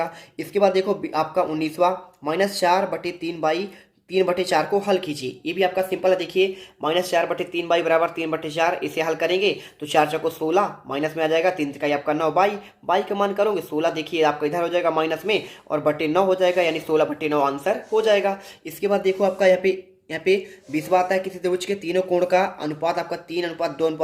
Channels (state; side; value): identical; both; correlation 1.00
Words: इसके बाद देखो आपका 19वां -4/3/3/4 को हल कीजिए। ये भी आपका सिंपल है। देखिए -4/3 बाई बराबर 3/4, इसे हल करेंगे तो 4 चौको 16, माइनस में आ जाएगा 3 का आपका 9 बाई का मान करोगे 16, देखिए आपका इधर हो जाएगा माइनस में और बटे 9 हो जाएगा, यानी 16/9 आंसर हो जाएगा। इसके बाद देखो आपका यहाँ पे 20वां आता है, किसी त्रिभुज के तीनों कोण का अनुपात आपका